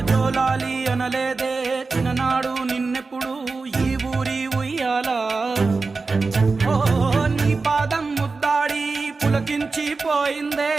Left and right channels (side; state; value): left; quieter; 4.1 dB